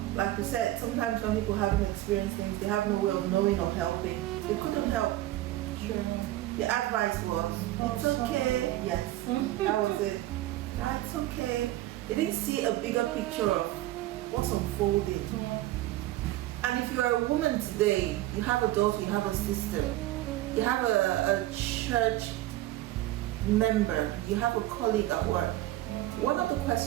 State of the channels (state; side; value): quieter; left; 15.7 dB